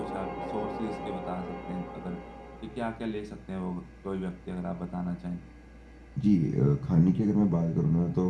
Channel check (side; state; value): both; identical; correlation 1.00